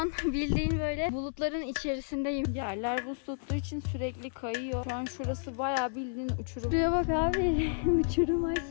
bildiğin böyle bulutların içerisindeyim. Yerler buz tuttuğu için sürekli kayıyor. Şu an şurası bayağı bildiğin uçurum. Şuraya bak abi. Uçurum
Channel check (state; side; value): silent; right; 57 dB below the other